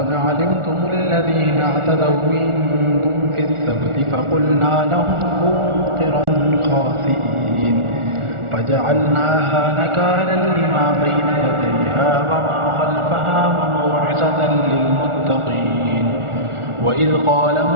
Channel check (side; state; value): left; late; 1.4 ms